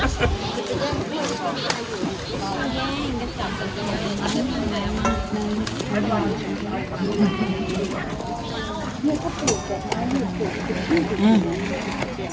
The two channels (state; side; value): identical; both; correlation 1.00